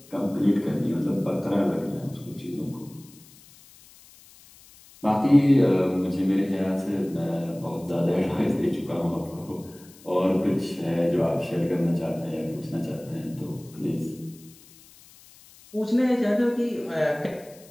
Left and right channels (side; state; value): left; noise; hiss, 24 dB below the sound